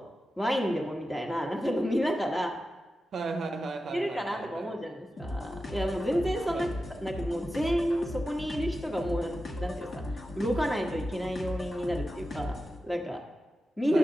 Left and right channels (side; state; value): both; normal; correlation 0.92